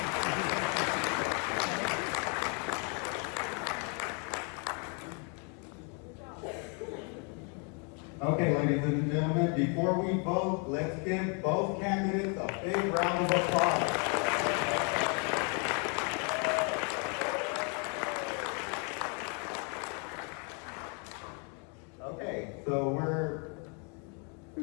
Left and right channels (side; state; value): right; quieter; 37.3 dB